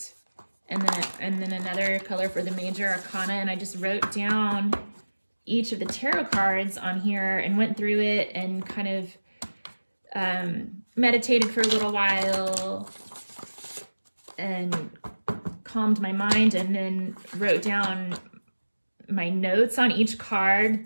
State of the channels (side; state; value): both; inverted; correlation -1.00